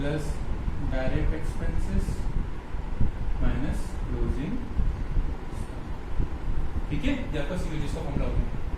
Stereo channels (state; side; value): identical; both; correlation 1.00